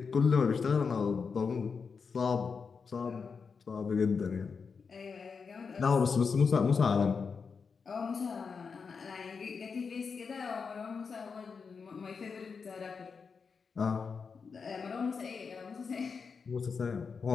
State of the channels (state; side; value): quieter; right; 5.4 dB